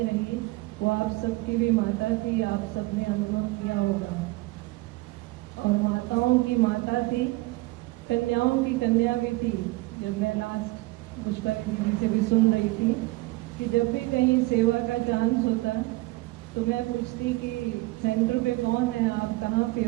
रही, वो आप सबकी भी माता थी। आप सबने अनुभव किया होगा, और माताओं की माता थी, कन्याओं की कन्या भी थी। जब मैं लास्ट पुष्पाली दीदी से भी सुन रही थी कि जब भी कहीं सेवा का चांस होता तो मैं पूछती कि सेंटर पे कौन है, आप कहाँ पे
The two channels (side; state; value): left; quieter; 21.3 dB